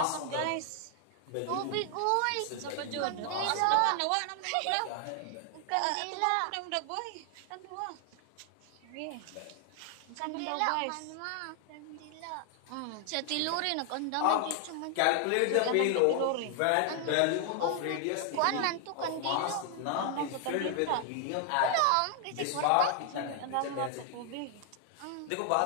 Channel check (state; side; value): different; both; correlation 0.00